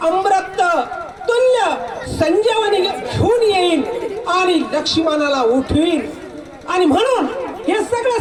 अमृत तुल्य संजीवनी घेऊन येईल आणि लक्ष्मणाला उठवीन. आणि म्हणून हे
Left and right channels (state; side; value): identical; both; correlation 1.00